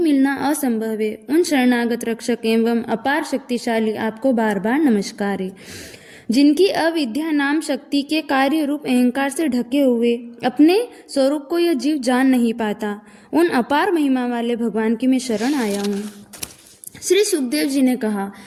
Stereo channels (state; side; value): identical; both; correlation 1.00